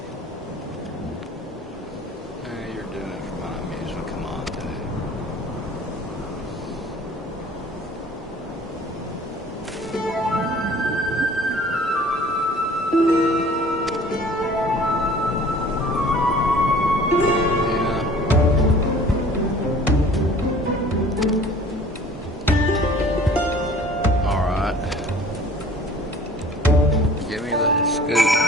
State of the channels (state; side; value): normal; both; correlation 0.49